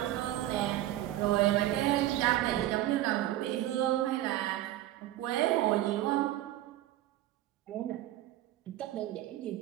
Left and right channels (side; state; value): left; quieter; 14.4 dB